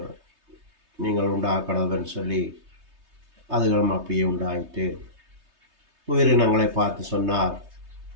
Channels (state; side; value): late; left; 3.3 ms